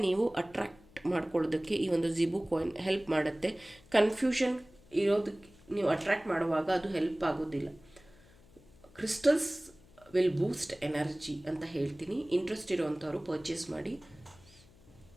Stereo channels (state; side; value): noise; left; hum, 26 dB below the sound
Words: ನೀವು ಅಟ್ರಾಕ್ಟ್ ಮಾಡ್ಕೊಳ್ಳೋದಕ್ಕೆ ಈ ಒಂದು ಜಿಬು ಕಾಯಿನ್ ಹೆಲ್ಪ್ ಮಾಡುತ್ತೆ. ಕನ್ಫ್ಯೂಷನ್ ಇರೋದಕ್ಕೆ ನೀವು ಅಟ್ರಾಕ್ಟ್ ಮಾಡುವಾಗ ಅದು ಹೆಲ್ಪ್ ಆಗೋದಿಲ್ಲ. ಕ್ರಿಸ್ಟಲ್ಸ್ ವಿಲ್ ಬೂಸ್ಟ್ ಎನರ್ಜಿ ಅಂತ ಹೇಳ್ತೀನಿ. ಇಂಟ್ರೆಸ್ಟ್ ಇರೋವಂಥವ್ರು ಪರ್ಚೇಸ್ ಮಾಡಿ.